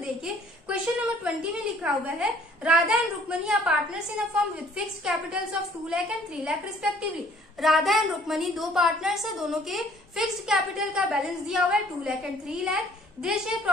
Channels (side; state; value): both; normal; correlation 0.58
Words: देखिए क्वेश्चन नंबर 20 में लिखा हुआ है, Radha and Rukmani are partners in a firm with fixed capitals of 2 lakh and 3 lakh respectively. Radha and Rukmani दो पार्टनर्स है, दोनों के फिक्स्ड कैपिटल का बैलेंस दिया हुआ है 2 lakh and 3 lakh. They share